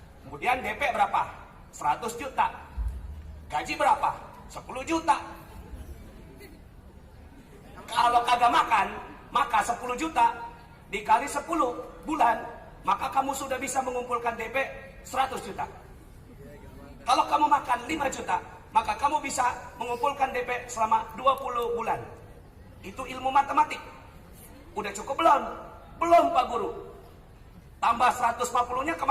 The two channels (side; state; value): both; identical; correlation 1.00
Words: Kemudian DP berapa? 100 juta. Gaji berapa? 10 juta. Kalau kagak makan, maka 10 juta dikali 10 bulan, maka kamu sudah bisa mengumpulkan DP 100 juta. Kalau kamu makan 5 juta, maka kamu bisa mengumpulkan DP selama 20 bulan. Itu ilmu matematik. Udah cukup belum? Belum, Pak Guru. Tambah 140-nya